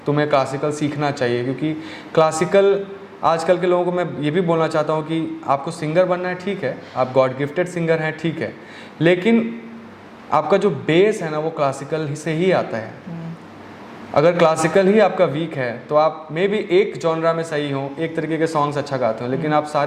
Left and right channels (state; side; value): identical; both; correlation 1.00